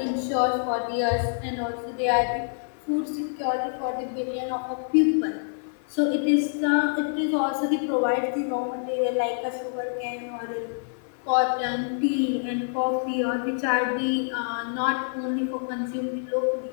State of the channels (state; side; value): silent; right; digital silence